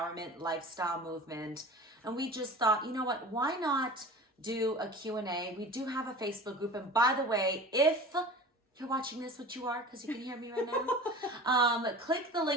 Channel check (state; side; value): normal; both; correlation 0.38